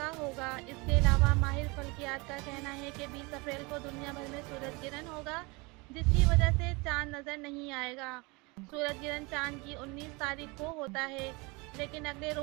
होगा। इसके अलावा माहिर फल्कियात का कहना है कि 20 अप्रैल को दुनिया भर में सूरज गिरहन होगा, जिसकी वजह से चांद नज़र नहीं आएगा। सूरज गिरहन चांद की 19 तारीख को होता है, लेकिन अगले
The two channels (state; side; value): quieter; left; 26.5 dB